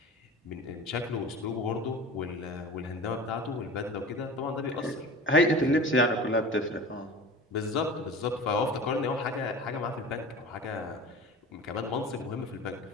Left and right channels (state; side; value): normal; both; correlation 0.37